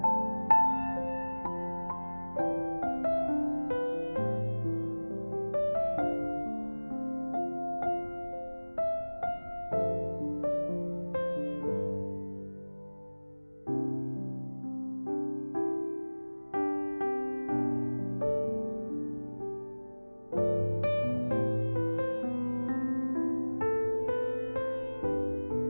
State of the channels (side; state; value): both; inverted; correlation -1.00